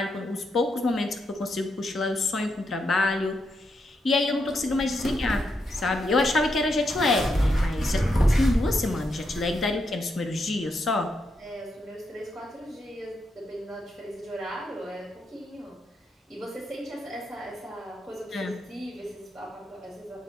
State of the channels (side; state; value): both; normal; correlation 0.82